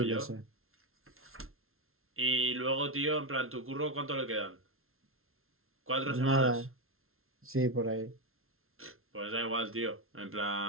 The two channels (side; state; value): left; late; 0.62 ms